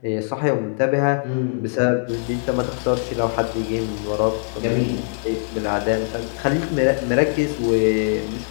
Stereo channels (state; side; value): silent; right; digital silence